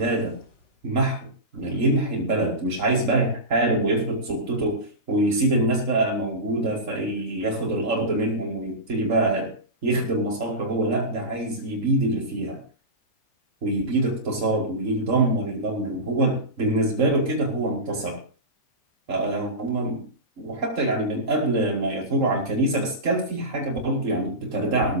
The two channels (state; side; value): late; left; 3.7 ms